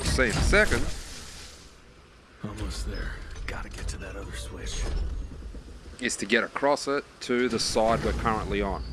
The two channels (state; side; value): identical; both; correlation 1.00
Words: see in a second, Almost there. Gotta get to that other switch. is to get across it to the side we're currently on.